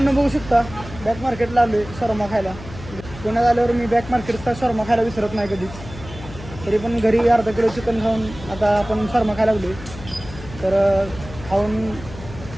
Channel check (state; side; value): noise; left; hum, 15 dB below the sound